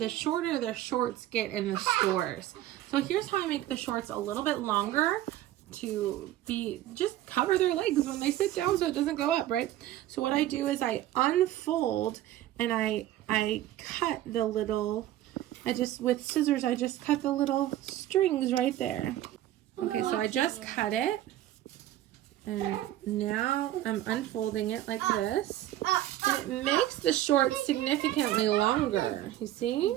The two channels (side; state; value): left; quieter; 13.7 dB